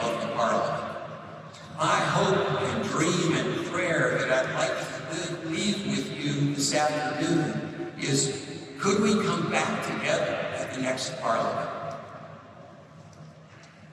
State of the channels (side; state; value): both; identical; correlation 1.00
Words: of the Parliament. My hope and dream and prayer that I'd like to leave with you this afternoon is, could we come back together at the next Parliament